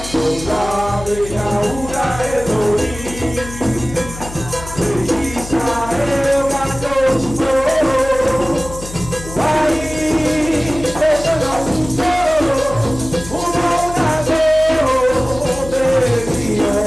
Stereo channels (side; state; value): left; noise; hum, 12 dB below the sound